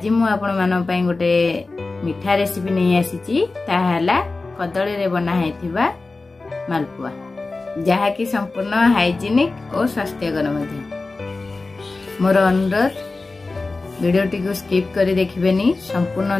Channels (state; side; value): quieter; right; 3.5 dB